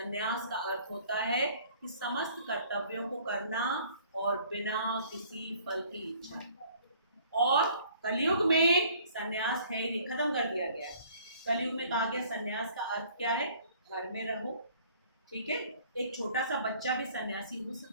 का अर्थ होता है कि समस्त कर्तव्यों को करना और बिना किसी फल की इच्छा। और कलयुग में संन्यास है ही नहीं, खत्म कर दिया गया है। कलयुग में कहा गया संन्यास का अर्थ क्या है? घर में रहो, ठीक है। एक छोटा सा बच्चा भी सन्यासी हो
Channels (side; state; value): both; inverted; correlation -0.55